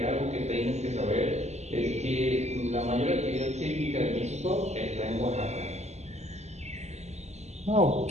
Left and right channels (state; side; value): late; left; 0.32 ms